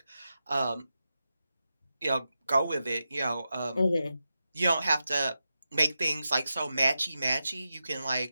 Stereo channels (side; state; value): both; inverted; correlation -0.89